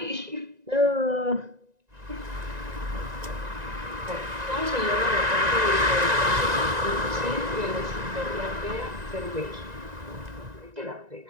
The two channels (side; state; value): left; late; 1.9 ms